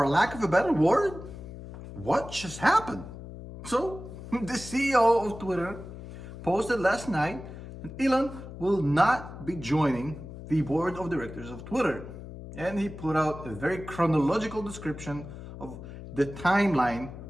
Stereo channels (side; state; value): left; noise; hum, 12 dB below the sound